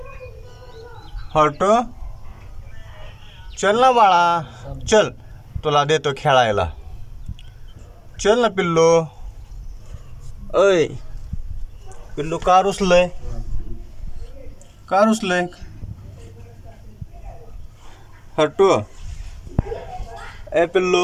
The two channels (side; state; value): both; identical; correlation 1.00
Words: हट्टू चल ना बाळा, चल तुला देतो खेळायला. चल ना पिल्लू. ऐ पिल्लू, का रुसलंय? का रुसलंय हट्टू? ए